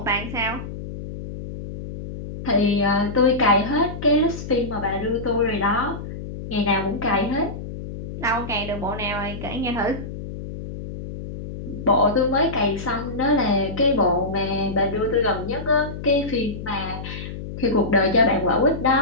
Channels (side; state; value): left; noise; hum, 9 dB below the sound